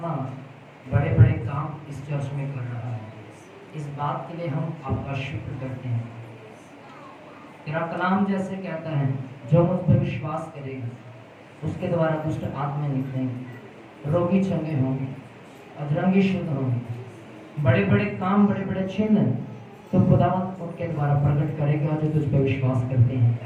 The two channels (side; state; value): both; identical; correlation 1.00